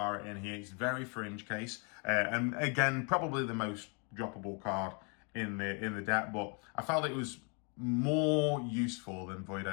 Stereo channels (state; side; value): quieter; right; 34.0 dB